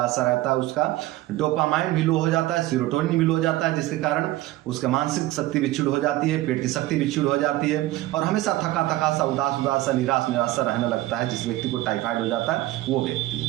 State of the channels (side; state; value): left; quieter; 16.8 dB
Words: सा रहता है। उसका डोपामाइन भी लो हो जाता है, सीरोटोनिन भी लो हो जाता है, जिसके कारण उसका मानसिक शक्ति भी क्षीण हो जाती है, पेट की शक्ति भी क्षीण हो जाती है, और हमेशा थका थका सा, उदास उदास सा, निराश निराश सा रहने लगता है। जिस व्यक्ति को टाइफाइड हो जाता है वो व्यक्ति,